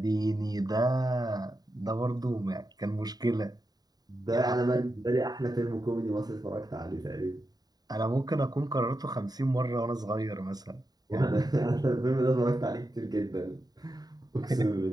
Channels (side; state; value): left; late; 0.19 ms